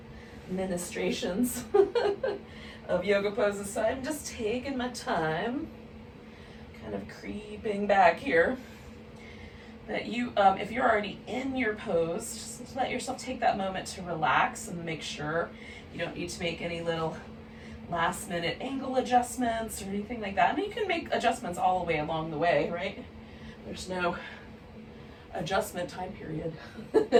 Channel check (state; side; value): identical; both; correlation 1.00